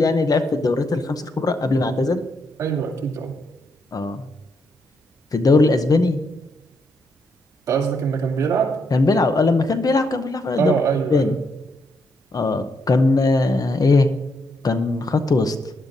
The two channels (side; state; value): both; normal; correlation 0.78